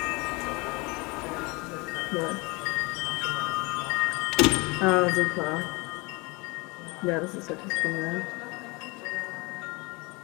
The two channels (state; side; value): quieter; right; 26.3 dB